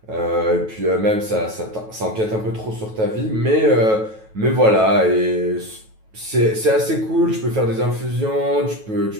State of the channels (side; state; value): left; late; 9.2 ms